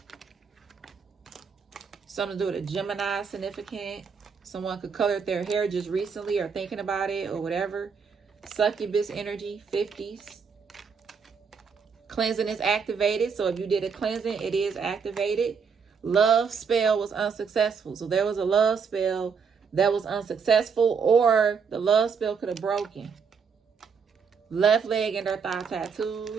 Something to do with a Gemini significant. Someone could color their hair just recently or thinking about it or whatever. Succubus energy, 50s. Cleansing is activated. So if you did a cleansing, it is activated. Love spell was unsuccessful. So there was a love spell that was unsuccessful, or the love spell could have broken. Left leg and their thigh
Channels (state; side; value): quieter; left; 6.0 dB